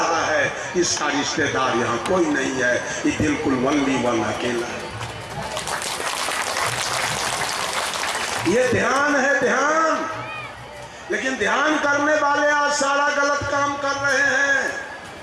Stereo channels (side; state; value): both; identical; correlation 1.00